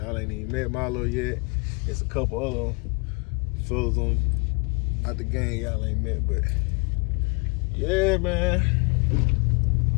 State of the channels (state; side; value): quieter; right; 30.3 dB